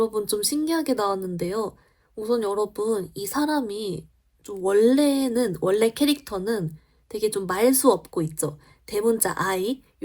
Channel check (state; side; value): identical; both; correlation 1.00